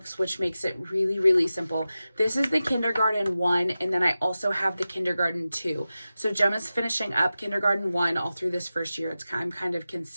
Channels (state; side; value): inverted; both; correlation -0.94